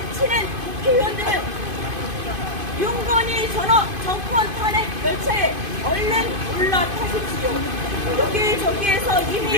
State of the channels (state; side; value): late; left; 2.5 ms